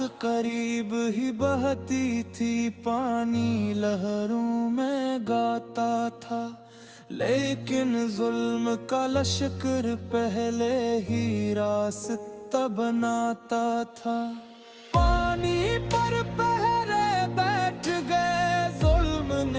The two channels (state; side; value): identical; both; correlation 1.00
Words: قریب ہی بہتی تھی، پانی لہروں میں گاتا تھا، لیکن ظلم کا لشکر پہلے ہی راستہ بناتا تھا۔ پانی پر پہرے بیٹھ گئے، ظلم